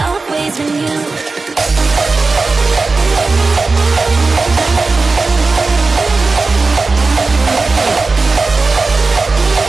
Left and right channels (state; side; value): quieter; left; 3.9 dB